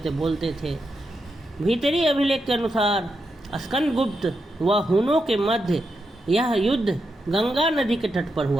बोलते थे। भीतरी अभिलेख के अनुसार स्कंदगुप्त व हुनों के मध्य यह युद्ध गंगा नदी के तट पर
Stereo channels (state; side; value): normal; both; correlation 0.85